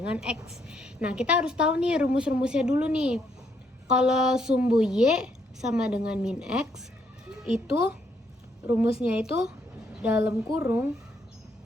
X. Nah, kita harus tahu nih rumus-rumusnya dulu nih. Kalau sumbu Y sama dengan min X, itu rumusnya itu dalam kurung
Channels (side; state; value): both; normal; correlation 0.73